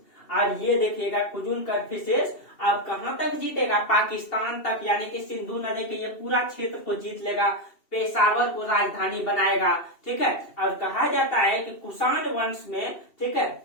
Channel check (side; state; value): right; late; 2.7 ms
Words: और ये देखिएगा कुजुल कडफिसेस अब कहां तक जीतेगा, पाकिस्तान तक, यानी कि सिंधु नदी के ये पूरा क्षेत्र को जीत लेगा, पेशावर को राजधानी बनाएगा। ठीक है, और कहा जाता है कि कुषाण वंश में, ठीक है,